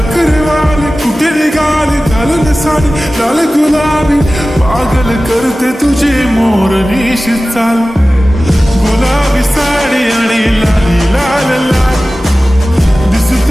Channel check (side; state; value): both; normal; correlation 0.96